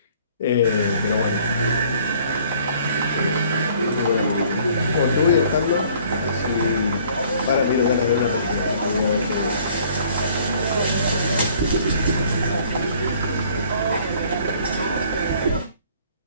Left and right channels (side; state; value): both; inverted; correlation -0.57